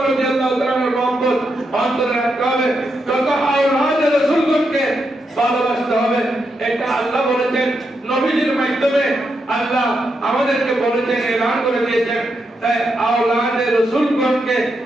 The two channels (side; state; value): both; normal; correlation 0.83